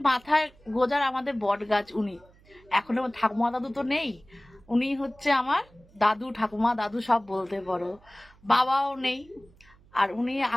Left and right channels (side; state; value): right; noise; hum, 28 dB below the sound